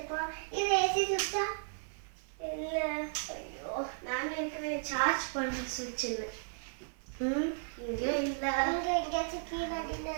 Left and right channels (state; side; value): silent; left; 55 dB below the other